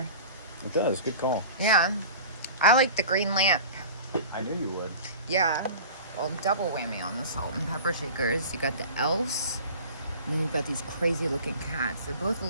It does. Good call. Yeah. I like the green lamp. I knew you would. Yeah. Well, double whammy on the salt and pepper shakers. You got the elves, and then you've got these crazy looking cats. They're both a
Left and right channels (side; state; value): both; inverted; correlation -0.39